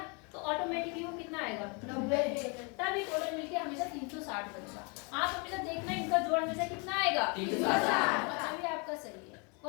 तो ऑटोमेटिकली वो कितना आएगा 90। तब ये टोटल मिलके हमेशा 360 बनेगा। आप हमेशा देखना इनका जोड़ हमेशा कितना आएगा 360। तभी आपका सही है।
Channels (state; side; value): quieter; right; 32.6 dB